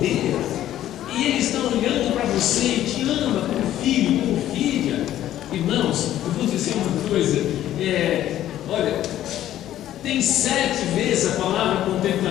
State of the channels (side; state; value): right; quieter; 12.6 dB